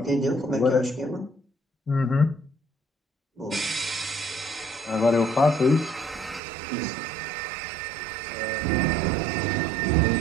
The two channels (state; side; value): drops out; left; at 6.4 s